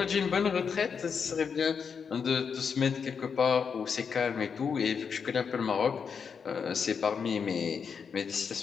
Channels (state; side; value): quieter; right; 6.3 dB